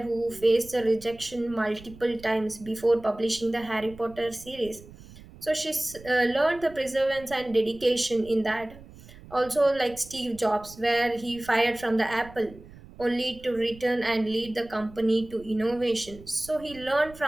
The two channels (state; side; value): noise; right; rumble, 19 dB below the sound